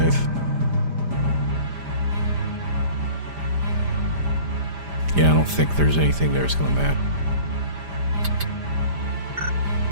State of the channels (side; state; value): left; late; 5.0 ms